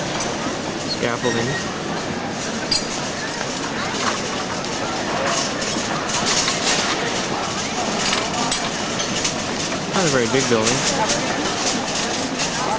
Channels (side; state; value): both; identical; correlation 1.00